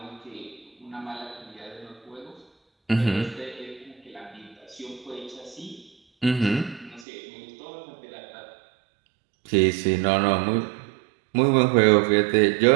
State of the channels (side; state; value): left; drops out; at 7.1 s